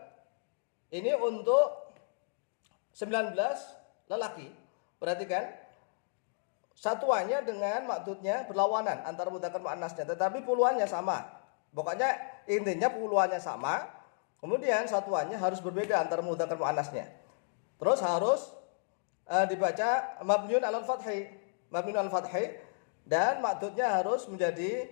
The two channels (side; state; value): right; silent; digital silence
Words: Ini untuk 19 lelaki. Perhatikan. Satuannya dengan maksudnya berlawanan antara mudzakkar muannasnya, tetapi puluhannya sama. Pokoknya intinya puluhannya sama. Kemudian satuannya harus berbeda antara mudzakkar muannasnya. Terus harus dibaca mabniun 'alal fathi. Mabniun 'alal fathi dan maksudnya harus menjadi